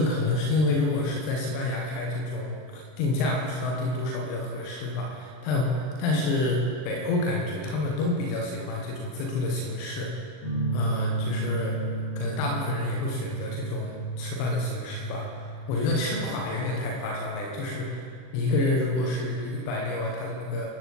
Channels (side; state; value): right; late; 40 ms